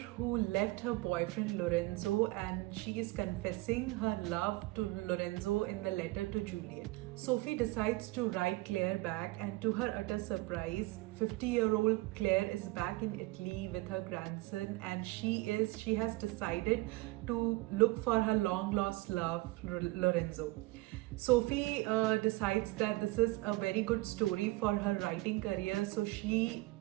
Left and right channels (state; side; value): quieter; left; 21.1 dB